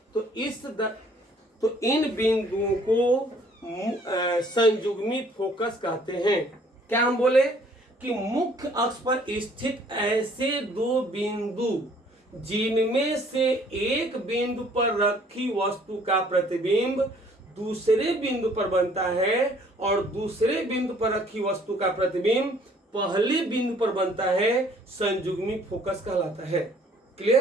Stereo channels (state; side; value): normal; both; correlation 0.59